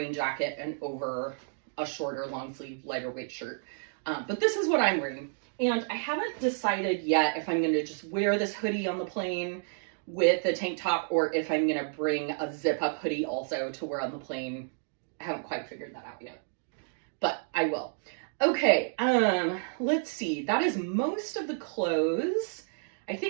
jacket and over a shorter long sleeve, lighter weight shirt. But this is what I'm wearing. And I haven't decided yet if I'm gonna just wear this hoodie on the plane with the tank top or if I'm gonna bring a zip up hoodie also to wear on the plane. I haven't quite figured that out yet, but I will. Okay, let's see. That is most of the clothes. I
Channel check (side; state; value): left; silent; digital silence